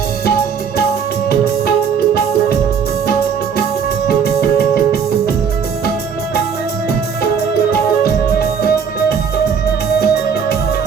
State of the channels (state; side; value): quieter; left; 6.8 dB